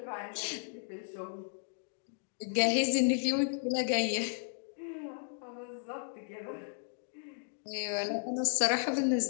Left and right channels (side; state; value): right; silent; digital silence